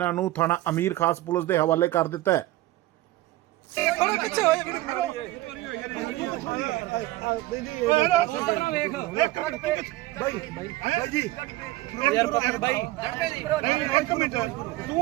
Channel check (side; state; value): left; quieter; 17.3 dB